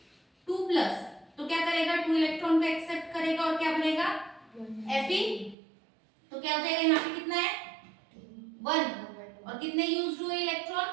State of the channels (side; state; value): left; drops out; at 5.6 s